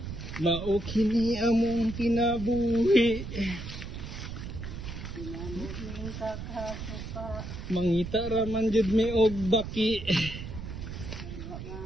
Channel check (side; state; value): right; noise; rumble, 8 dB below the sound